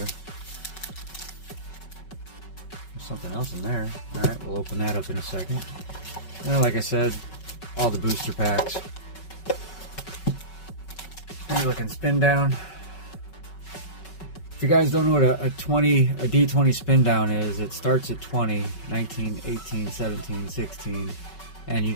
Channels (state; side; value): late; right; 5.3 ms